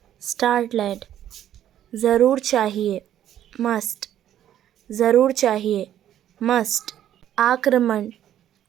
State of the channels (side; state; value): left; quieter; 11.3 dB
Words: स्टार्टलेड। ज़रूर चाहिए मस्ट, ज़रूर चाहिए मस्ट। आक्रमण